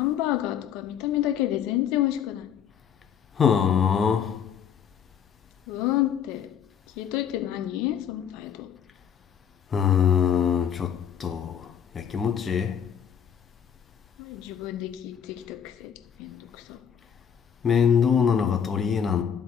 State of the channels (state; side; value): quieter; right; 8.3 dB